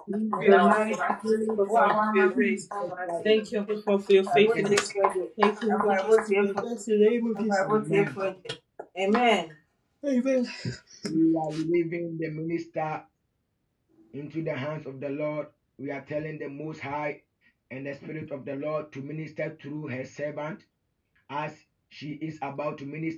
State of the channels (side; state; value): both; identical; correlation 1.00